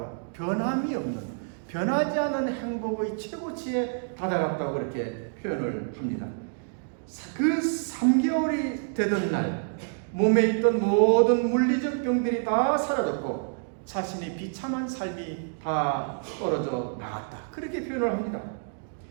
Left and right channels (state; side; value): silent; left; digital silence